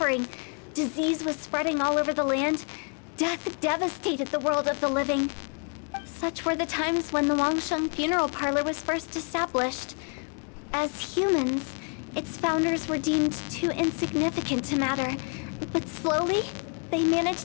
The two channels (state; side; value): quieter; right; 38.4 dB